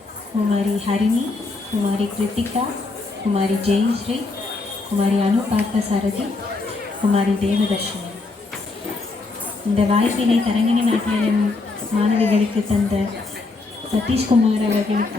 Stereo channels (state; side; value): quieter; right; 3.6 dB